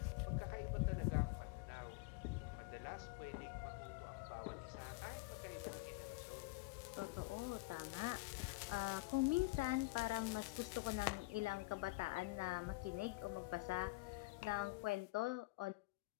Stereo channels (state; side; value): quieter; right; 22.9 dB